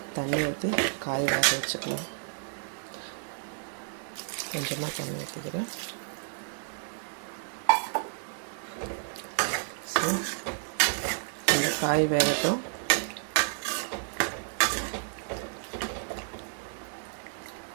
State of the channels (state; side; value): silent; left; digital silence